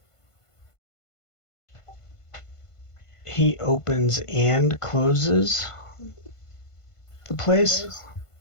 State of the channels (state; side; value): late; right; 1.5 ms